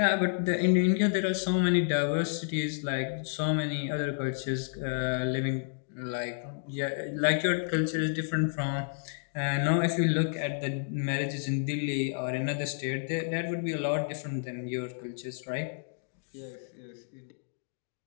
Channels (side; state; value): right; silent; digital silence